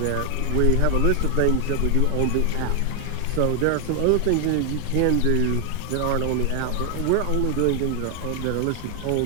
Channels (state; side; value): different; both; correlation 0.00